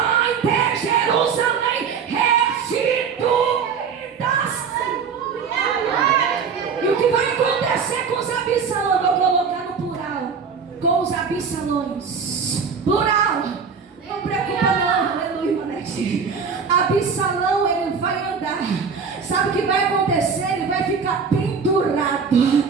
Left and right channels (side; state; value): left; quieter; 6.0 dB